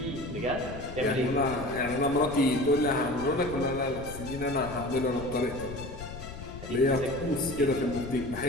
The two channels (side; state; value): left; noise; rumble, 12 dB below the sound